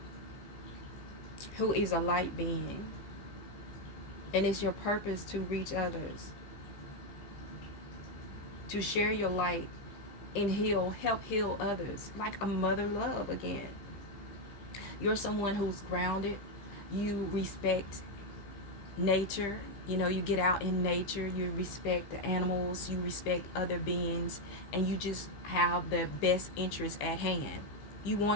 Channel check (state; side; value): late; right; 15 ms